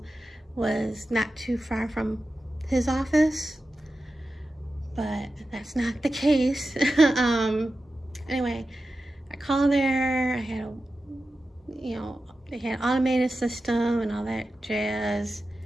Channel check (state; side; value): normal; both; correlation 0.93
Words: was not too far from his office, but that's not the case. Anyway, I called there. I had they had automated system and all that jazz.